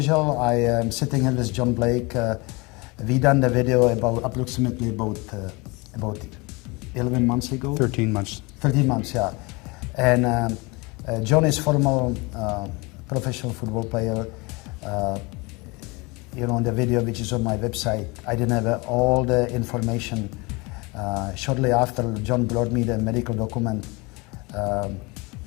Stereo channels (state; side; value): quieter; right; 26.4 dB